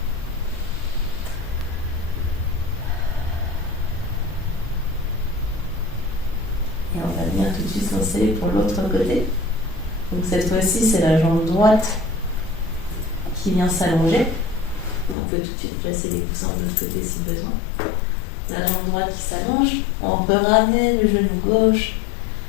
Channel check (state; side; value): drops out; right; at 15.2 s